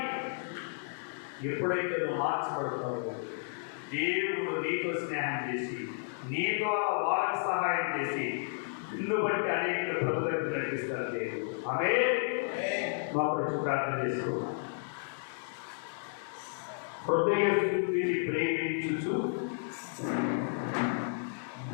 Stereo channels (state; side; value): silent; right; digital silence